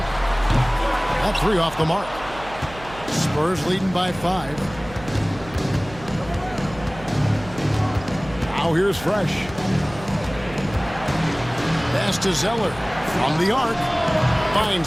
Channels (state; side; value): noise; right; hum, 16 dB below the sound